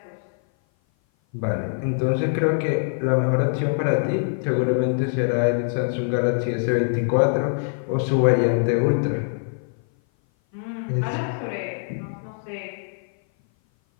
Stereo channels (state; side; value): silent; right; 57 dB below the other